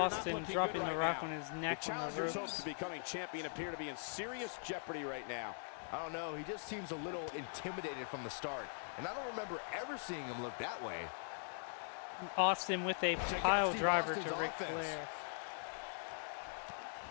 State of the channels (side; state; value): right; silent; digital silence